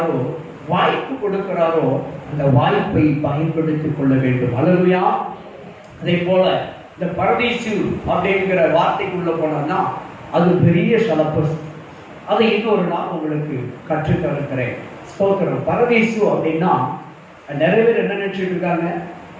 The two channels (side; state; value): both; identical; correlation 1.00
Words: வாய்ப்பு கொடுக்கிறாரோ, அந்த வாய்ப்பை பயன்படுத்திக் கொள்ள வேண்டும். அல்லேலூயா. அதே போல இந்த பரதீசு அப்படிங்கிற வார்த்தைக்குள்ள போனோம்னா அது பெரிய சலப்பஸ். அதை இன்னொரு நாள் உங்களுக்கு கற்றுத்தருக்கிறேன். ஸ்தோத்திரம். பரதீசு அப்படின்னா நிறைய பேர் என்ன நினைச்சிட்டு இருக்காங்க